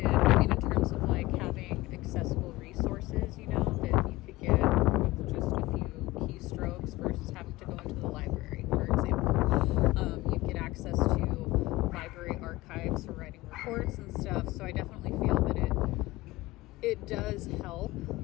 I mean, in terms of like having accessible resources, you know, that you could get with just a few keystrokes versus having to go into the library, for example. You get access to library archives for writing reports and stuff. So I definitely feel that it does help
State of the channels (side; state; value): right; quieter; 19.1 dB